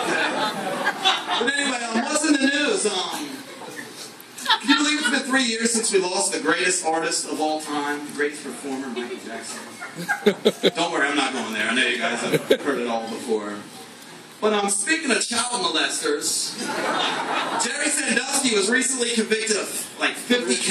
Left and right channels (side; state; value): both; identical; correlation 1.00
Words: But anyway, what's in the news? Can you believe it's been 3 years since we lost the greatest artist of all time, the greatest performer, Michael Jackson? Don't worry, I'm not going there. I know you guys have heard it all before. But speaking of child molesters, Jerry Sandusky was recently convicted of like 50